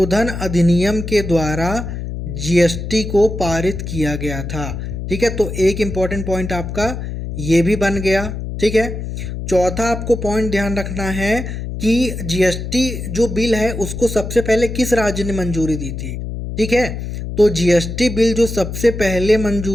अधिनियम के द्वारा जीएसटी को पारित किया गया था। ठीक है, तो एक इंपॉर्टेंट पॉइंट आपका ये भी बन गया। ठीक है, चौथा आपको पॉइंट ध्यान रखना है कि जीएसटी जो बिल है उसको सबसे पहले किस राज्य ने मंजूरी दी थी। ठीक है, तो जीएसटी बिल जो सबसे पहले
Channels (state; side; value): noise; left; hum, 6 dB below the sound